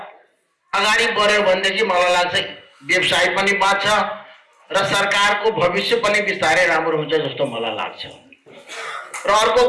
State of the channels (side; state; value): both; identical; correlation 1.00